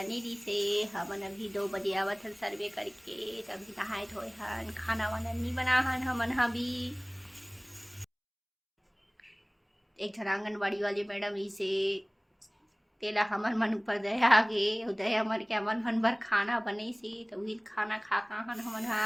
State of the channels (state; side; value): identical; both; correlation 1.00